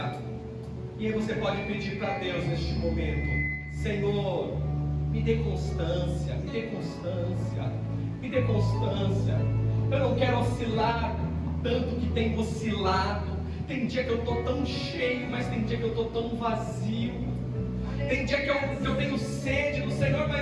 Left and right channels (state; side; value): identical; both; correlation 1.00